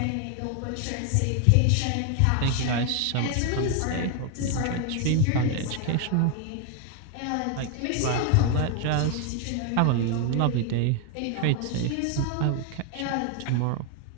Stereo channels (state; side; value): different; both; correlation 0.01